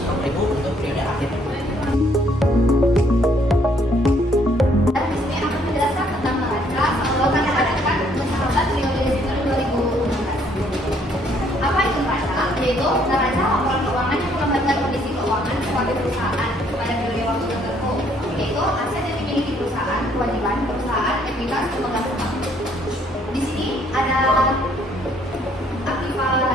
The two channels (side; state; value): both; normal; correlation 0.66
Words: untuk periode akhir. Dan di sini akan menjelaskan tentang neraca pengelolaan yang diadakan mencatat periode Desember 2016. Apa itu neraca? Yaitu neraca laporan keuangan yang menggambarkan kondisi keuangan sebagai perusahaan pada periode waktu tertentu, yaitu aset yang dimiliki perusahaan, kewajiban perusahaan, ekuitas, dan penghasilan. Di sini ada aktiva